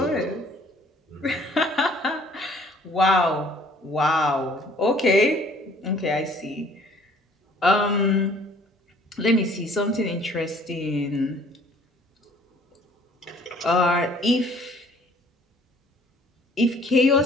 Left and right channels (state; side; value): normal; both; correlation 0.56